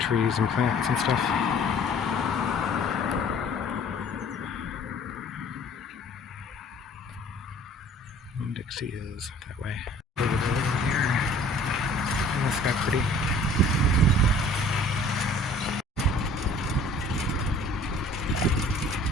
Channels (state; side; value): normal; both; correlation 0.51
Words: and plants and stuff. Winn-Dixie is that way. Over here. Isn't this guy pretty?